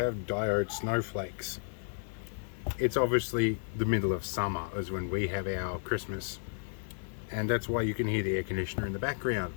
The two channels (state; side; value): silent; right; digital silence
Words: diode snowflakes. It's obviously the middle of summer is when we have our Christmas, and that's why you can hear the air conditioner in the background.